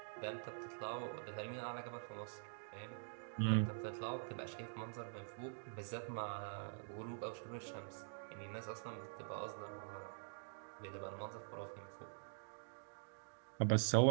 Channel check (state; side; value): silent; left; digital silence